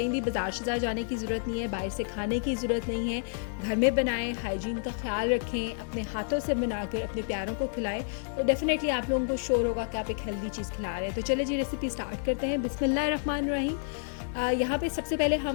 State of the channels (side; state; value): right; silent; digital silence